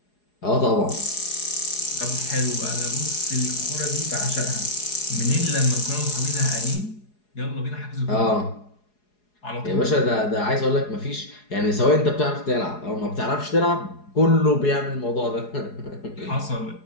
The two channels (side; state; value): right; late; 4.8 ms